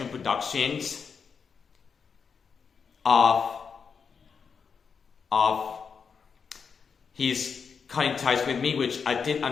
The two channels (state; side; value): quieter; right; 6.0 dB